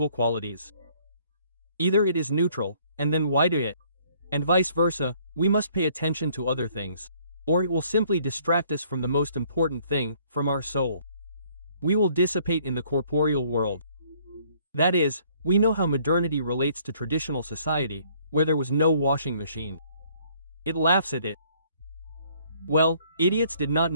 qualities? Either it is neutral, and then why do it? And vice versa, we must pay attention to other things. Or it will simply distract us from the most important thing, from our soul. We will dissipate in the corporeal world. That is, we know how modernity relates to traditional society, where there was no washing machine. It laughs at it. Well, idiots did not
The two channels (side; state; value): both; inverted; correlation -0.61